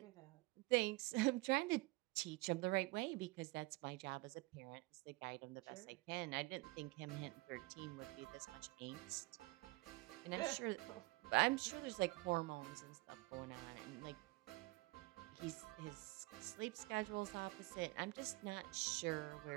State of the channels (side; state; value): left; quieter; 23.2 dB